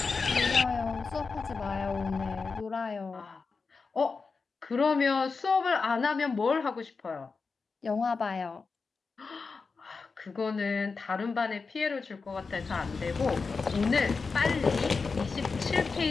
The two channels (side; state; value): right; quieter; 4.6 dB